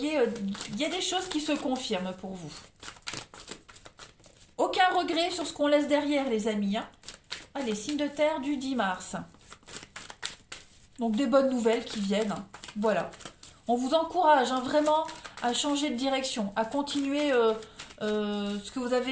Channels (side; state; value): both; identical; correlation 1.00